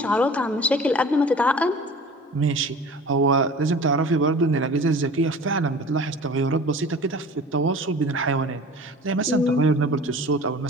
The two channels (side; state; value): both; normal; correlation 0.41